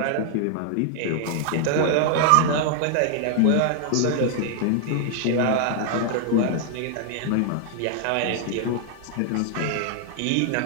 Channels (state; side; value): different; both; correlation 0.00